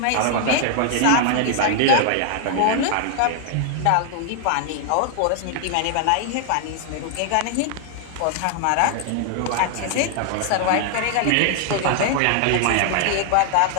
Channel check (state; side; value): different; both; correlation 0.00